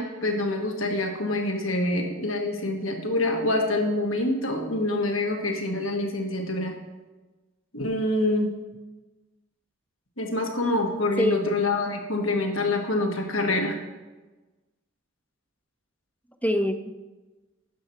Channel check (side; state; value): both; normal; correlation 0.25